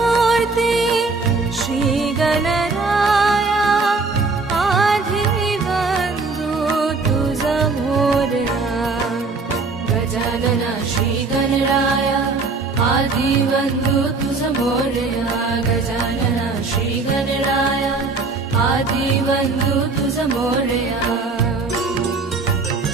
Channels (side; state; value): left; quieter; 4.0 dB